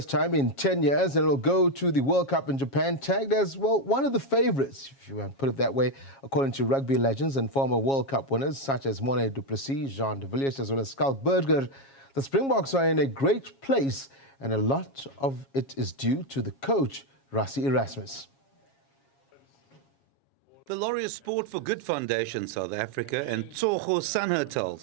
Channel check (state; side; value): late; right; 7.3 ms